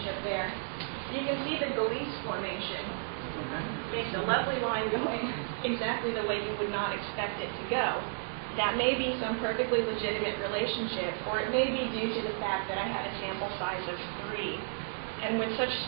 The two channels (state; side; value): silent; left; digital silence